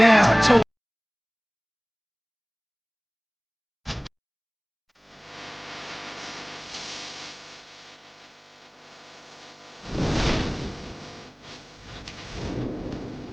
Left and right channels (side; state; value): both; identical; correlation 1.00